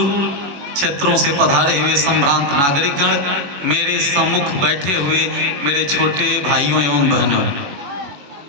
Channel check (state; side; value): late; left; 21 ms